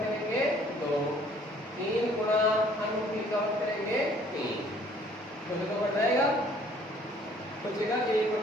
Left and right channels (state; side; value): normal; both; correlation 0.57